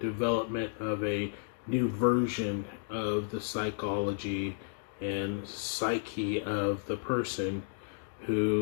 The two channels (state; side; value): silent; right; digital silence